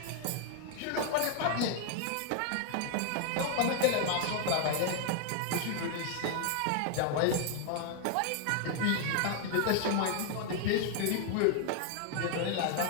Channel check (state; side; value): different; both; correlation 0.00